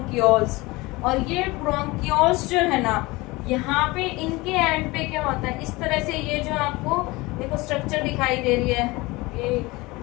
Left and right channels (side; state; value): right; quieter; 22.3 dB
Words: और ये ब्रोंक्यूल्स जो है ना, यहाँ पे इनके एंड पे क्या होता है, इस तरह से ये जो आपको देखो स्ट्रक्चर दिखाई दे रही है, ये